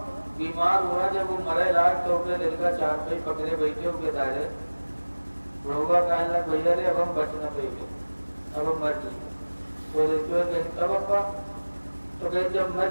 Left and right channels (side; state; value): both; inverted; correlation -1.00